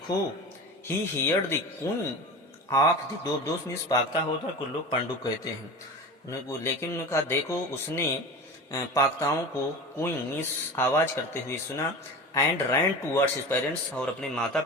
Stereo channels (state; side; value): normal; both; correlation 0.31